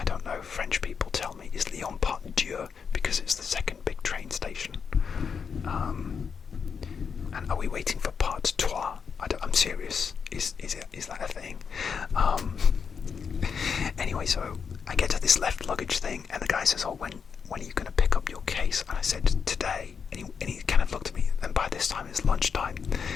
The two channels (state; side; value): quieter; right; 6.3 dB